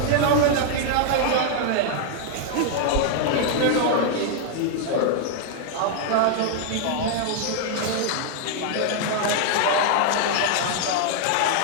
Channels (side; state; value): both; different; correlation -0.01